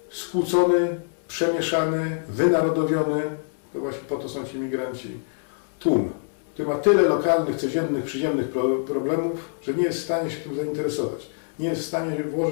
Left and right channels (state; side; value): silent; right; digital silence